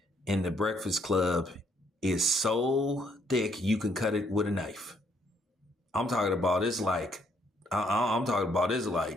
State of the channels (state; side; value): normal; both; correlation 0.69